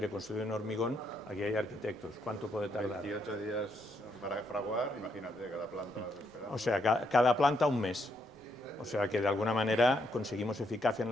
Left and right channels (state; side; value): normal; both; correlation 0.76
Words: construido en hormigón, aquí hay arquitectos. ¿Cuánto puede tardar? 28 días para fraguar, imagínate, cada planta más esperada. O sea, cada planta un mes. O sea que de alguna manera conseguimos eficacia en